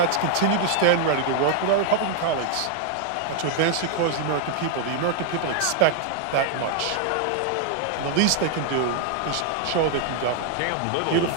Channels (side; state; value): both; different; correlation 0.00